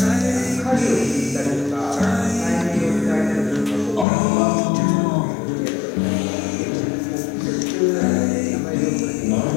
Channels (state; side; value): drops out; right; at 4.0 s